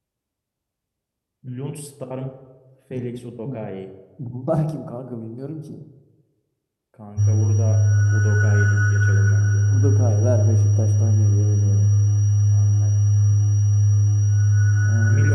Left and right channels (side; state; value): both; identical; correlation 1.00